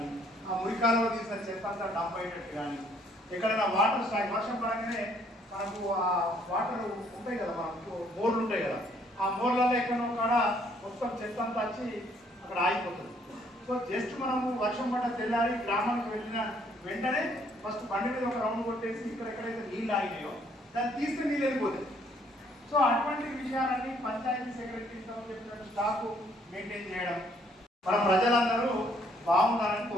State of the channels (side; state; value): both; normal; correlation 0.65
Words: ఆ మురి కాలువలు తీసిన చెత్త అంతా డంప్ అయ్యేటట్టు కానీ, ఎక్కడైనా వాటర్ స్టాక్ వర్షం పడగానే మనకు ఆ వాటర్ ఉంటాయి కదా, మనకు బోర్లు ఉంటాయి కదా, ఆ బోర్లలో ఎక్కడో కాడ మొత్తం చెత్త అంతా వచ్చి అక్కడ ఆగిపోతుంది. సో జస్ట్ మనము వర్షం పడ్డ తెల్లారి గ్రామానికి వెళ్ళిన వెంటనే ఫస్ట్ బండి మీద ఒక రౌండ్ కొట్టేసి ఇక్కడ ఎక్కడైతే నీళ్ళు ఆగినాయో దాన్ని తీస్తే నీళ్ళు వెళ్ళిపోతాయి. సో అటువంటి విషయాలన్నీ పంచాయతీ సెక్రటరీతో చెప్పినట్టు స్టాక్ మెయింటైన్ చేయడం, మన ప్రజలందరూ బాగుండాలని